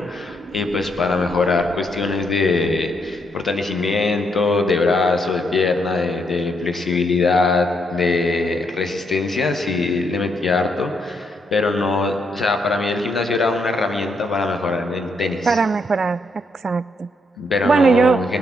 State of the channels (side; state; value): both; normal; correlation 0.76